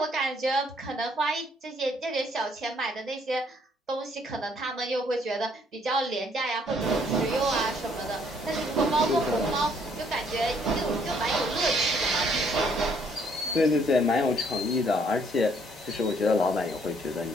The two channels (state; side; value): normal; both; correlation 0.65